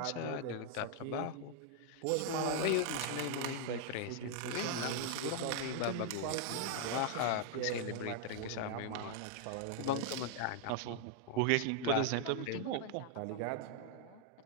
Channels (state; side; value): different; both; correlation 0.00